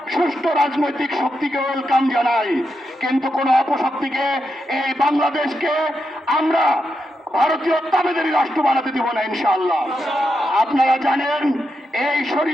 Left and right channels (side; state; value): both; normal; correlation 0.85